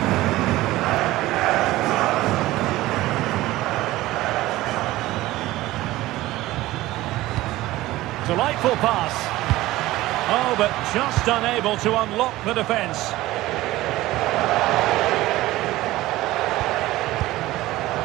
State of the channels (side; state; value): left; quieter; 17.2 dB